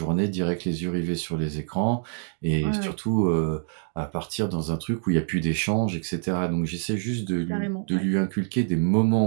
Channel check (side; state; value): left; silent; digital silence